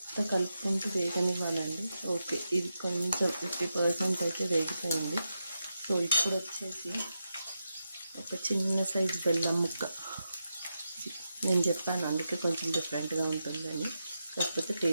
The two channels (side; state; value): both; inverted; correlation -0.87